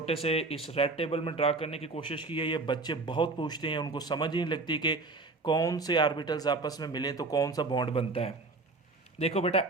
से इस रेड टेबल में ड्रा करने की कोशिश की है। ये बच्चे बहुत पूछते हैं, उनको समझ ही नहीं लगती कि कौन से आर्बिटल्स आपस में मिले तो कौन सा बॉन्ड बनता है। देखो बेटा,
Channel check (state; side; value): quieter; left; 3.5 dB